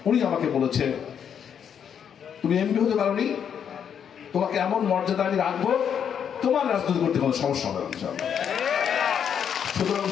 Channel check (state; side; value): quieter; right; 8.1 dB